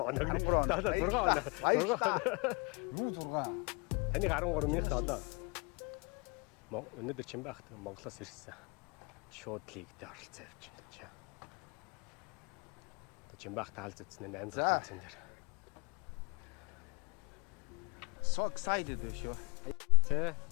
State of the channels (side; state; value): right; quieter; 31.2 dB